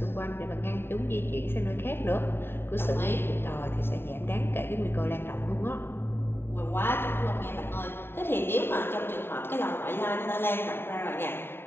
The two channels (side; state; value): right; late; 0.11 ms